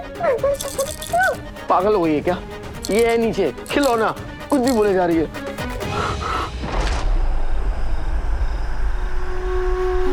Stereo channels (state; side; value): identical; both; correlation 1.00